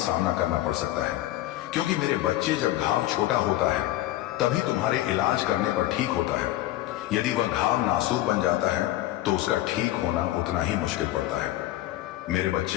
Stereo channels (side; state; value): right; quieter; 15.4 dB